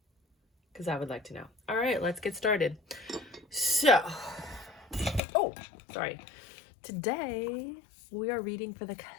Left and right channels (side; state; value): right; drops out; at 5.2 s